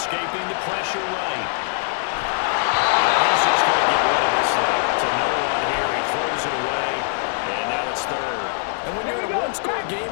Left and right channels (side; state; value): right; silent; digital silence